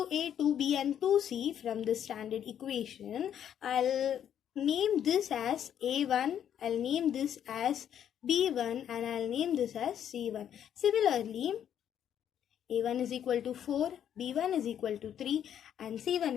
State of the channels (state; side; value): quieter; right; 9.6 dB